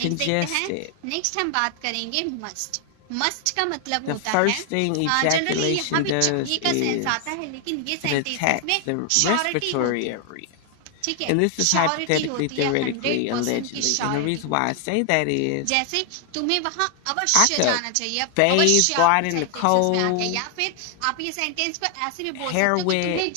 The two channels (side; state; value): both; different; correlation 0.00